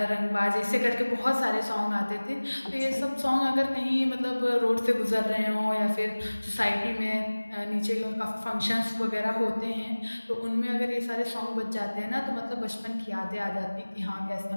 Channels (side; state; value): both; inverted; correlation -1.00